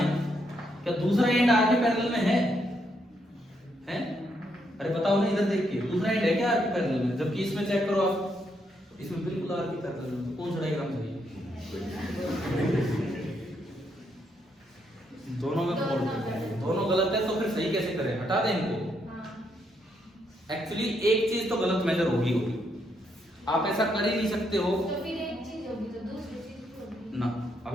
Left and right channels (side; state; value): both; normal; correlation 0.77